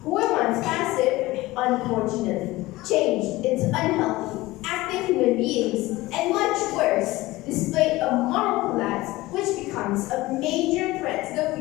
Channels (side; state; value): right; quieter; 19.1 dB